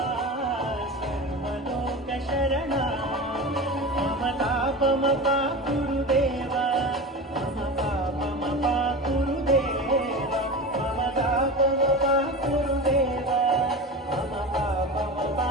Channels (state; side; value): normal; both; correlation 0.28